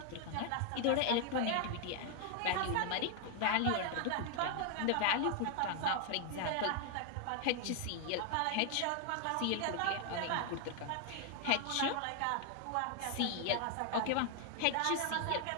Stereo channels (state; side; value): different; both; correlation 0.00